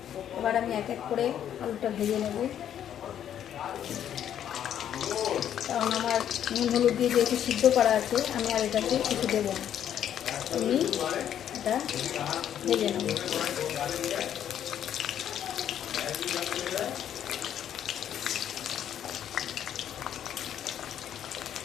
এবার আমি এক এক করে আলুটা ভেজে নেব, কারণ আমার নুন হলুদ দিয়ে যেহেতু সিদ্ধ করা আছে আমি আর এটাকে কিছু দেবো না। আমি এটা ভেজে নেব।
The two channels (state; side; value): quieter; right; 10.0 dB